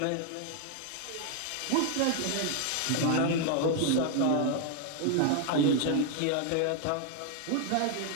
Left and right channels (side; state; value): both; different; correlation 0.00